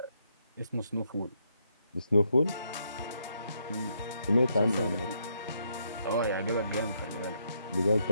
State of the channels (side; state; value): both; inverted; correlation -0.76